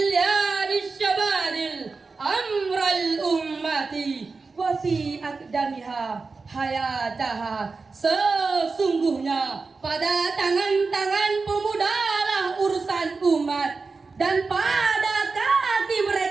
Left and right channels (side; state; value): left; quieter; 4.2 dB